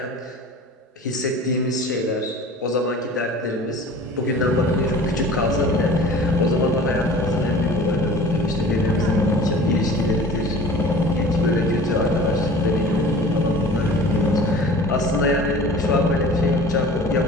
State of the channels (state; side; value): normal; both; correlation 0.43